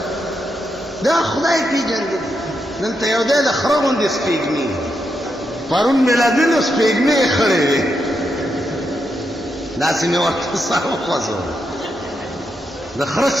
دا خدای پیژندلې دلته یو دی د خره غوندې سپېږمۍ پرون میلادینو سپېږمۍ خړې وې داسې مې ورته سر وخوځول د خره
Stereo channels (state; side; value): normal; both; correlation 0.83